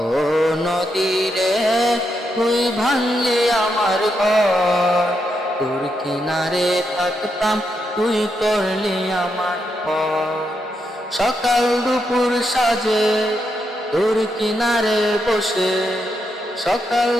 ও নদী রে, তুই ভাঙলি আমার ঘর। তোর কিনারে থাকতাম, তুই করলি আমার পর। সকাল দুপুর সাজে তোর কিনারে বসে, সকাল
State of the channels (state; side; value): normal; both; correlation 0.82